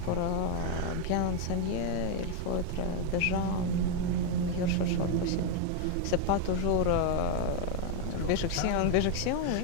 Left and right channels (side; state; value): both; different; correlation 0.01